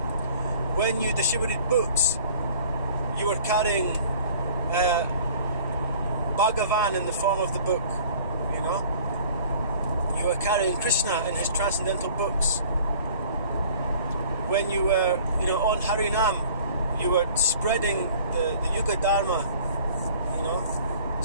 When you distributed books, you were carrying Bhagavan in the form of the book, you know. You were carrying Krishna in his transcendental books. When you were, you know, on Harinam, you were spreading the Yuga Dharma, you know.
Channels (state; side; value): inverted; both; correlation -0.50